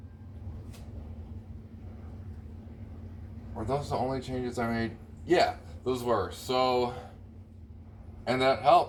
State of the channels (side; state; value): both; identical; correlation 1.00